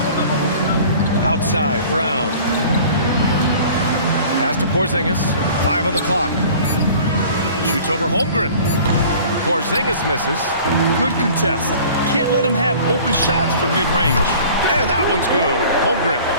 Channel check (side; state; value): both; inverted; correlation -0.46